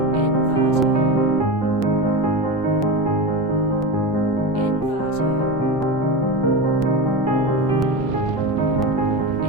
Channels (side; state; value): right; noise; rumble, 18 dB below the sound